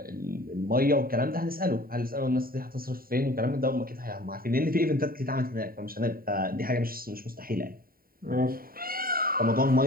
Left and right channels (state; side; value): late; left; 0.43 ms